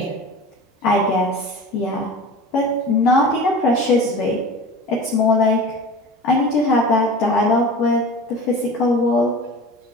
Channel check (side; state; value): both; normal; correlation 0.36